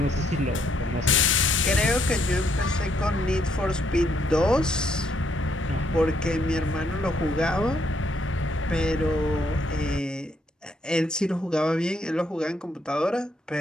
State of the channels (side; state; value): both; normal; correlation 0.72